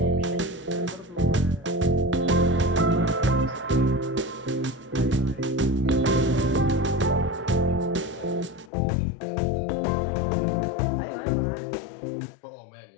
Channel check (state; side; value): drops out; right; at 8.7 s